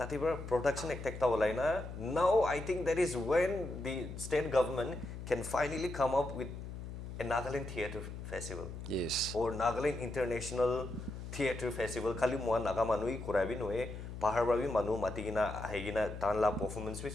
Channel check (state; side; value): noise; left; hum, 9 dB below the sound